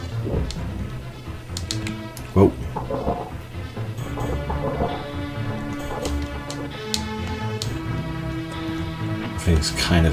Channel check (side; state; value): both; identical; correlation 1.00